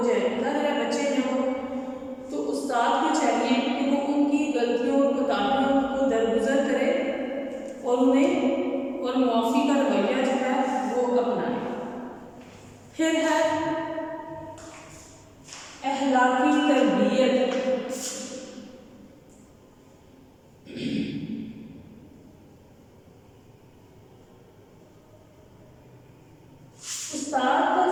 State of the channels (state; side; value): identical; both; correlation 1.00